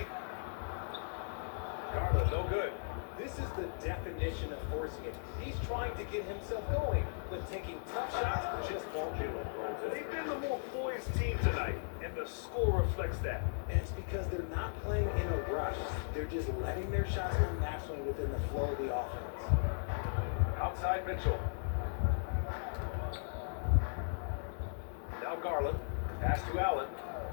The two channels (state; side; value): silent; right; digital silence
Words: Garland, no good. This is the definition of forcing it. He's trying to get himself going, but taking tough shots just won't do it. They've been the more poised team tonight, and the score reflects that. And it's because they're not playing in a rush. They're just letting their shots come naturally within the flow of the offense. Outside Mitchell. Now Garland. Pass to Allen.